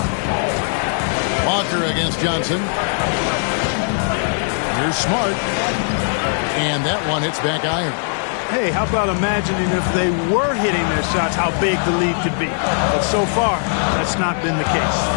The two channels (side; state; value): right; silent; 64 dB below the other